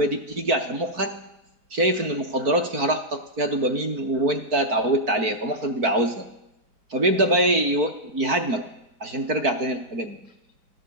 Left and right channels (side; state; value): left; late; 4.5 ms